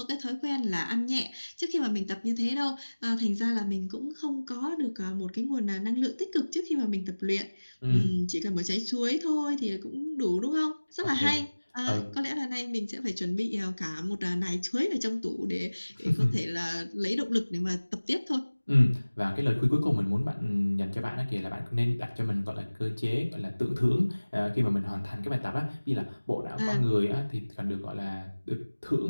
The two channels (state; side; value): inverted; both; correlation -1.00